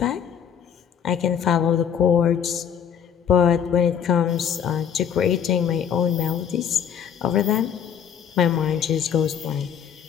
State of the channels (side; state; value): right; quieter; 8.2 dB